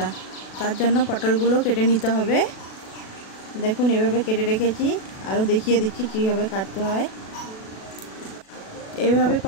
তার জন্য পটলগুলো কেটে নিতে হবে। দেখুন এভাবে কেটে রেখেছি, আরও দেখিয়ে দিচ্ছি কিভাবে কাটতে হয়। এইভাবে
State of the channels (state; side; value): late; right; 37 ms